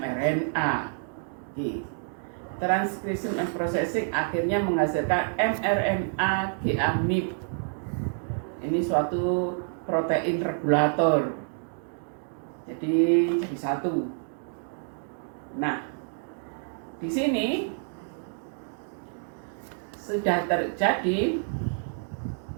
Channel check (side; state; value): left; silent; 59 dB below the other